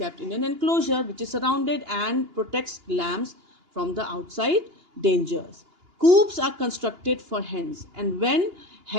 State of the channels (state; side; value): late; left; 2.9 ms